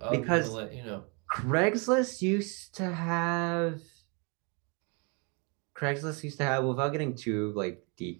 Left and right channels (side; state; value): left; quieter; 33.2 dB